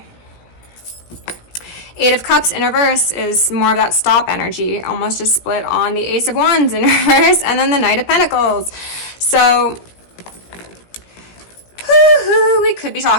Eight of Cups in reverse is more of that stop energy, almost just split on the Ace of Wands in reverse, and then the Knight of Pentacles. So we could be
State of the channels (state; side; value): late; right; 17 ms